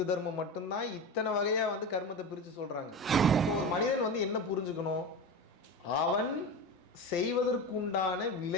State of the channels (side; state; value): both; normal; correlation 0.24